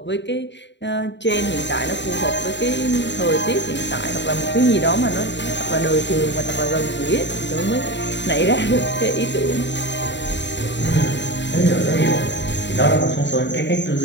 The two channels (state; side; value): late; right; 0.52 ms